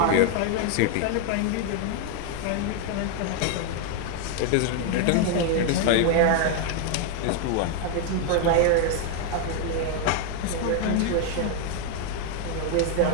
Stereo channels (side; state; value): both; different; correlation 0.00